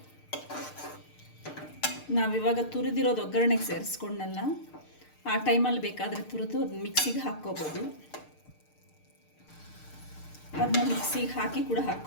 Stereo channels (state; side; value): late; right; 6.6 ms